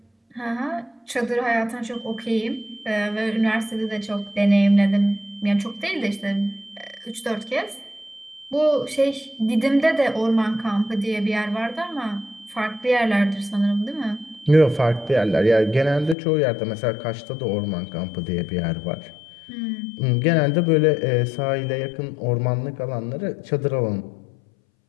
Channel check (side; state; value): right; drops out; at 16.2 s